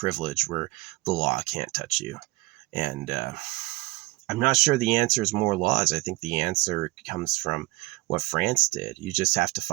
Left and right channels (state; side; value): quieter; left; 22.5 dB